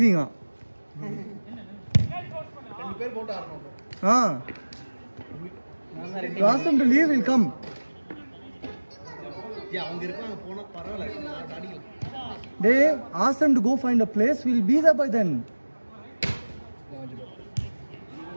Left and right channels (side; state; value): both; inverted; correlation -1.00